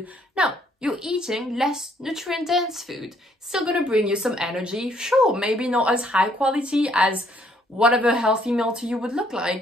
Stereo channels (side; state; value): both; normal; correlation 0.66